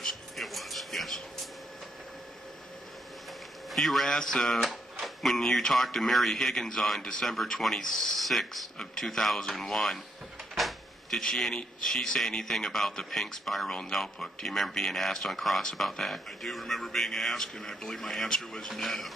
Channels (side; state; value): both; normal; correlation 0.76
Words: was, yes. You were asked when you talked to Mary Higgins on December 26th of 2001, did she say anything about the pink spiral notebook? Do you remember being asked on cross about that? I do remember being asked, and I believe my answer was no.